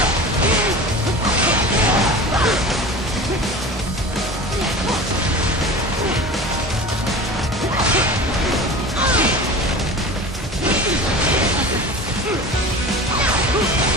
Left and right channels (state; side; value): normal; both; correlation 0.34